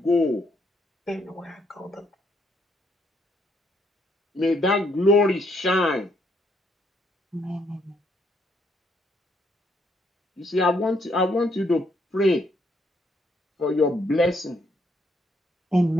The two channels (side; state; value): both; normal; correlation 0.71